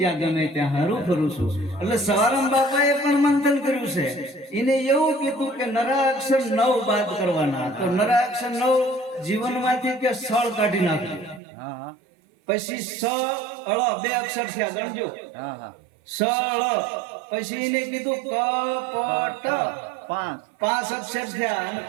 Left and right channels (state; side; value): drops out; left; at 11.4 s